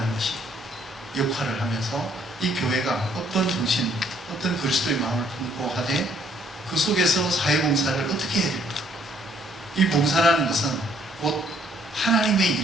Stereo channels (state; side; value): normal; both; correlation 0.65